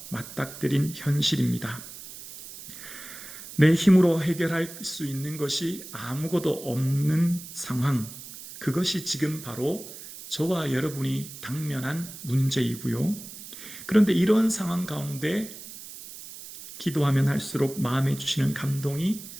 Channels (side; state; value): right; noise; hiss, 14 dB below the sound